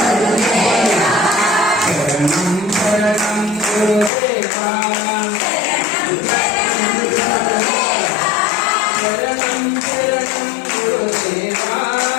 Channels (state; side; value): drops out; right; at 4.1 s